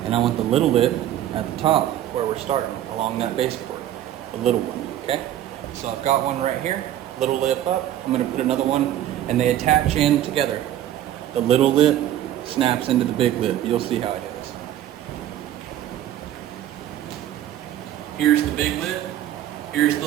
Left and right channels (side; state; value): left; quieter; 12.1 dB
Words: and I want the little lip at the top where we're starting, along that base board, the little one, okay? So I've got one right here, little lip up. I'm gonna put another one, and they attach in together. The little lip snaps into the big lip. You'll see how it is. Here's the big lip, here's the